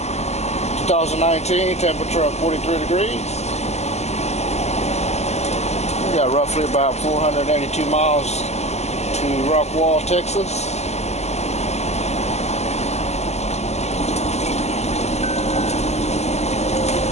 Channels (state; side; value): late; right; 0.32 ms